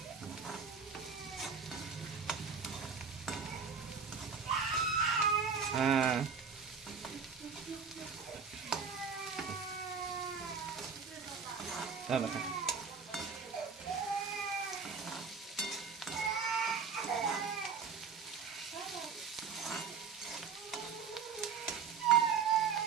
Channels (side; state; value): left; quieter; 6.0 dB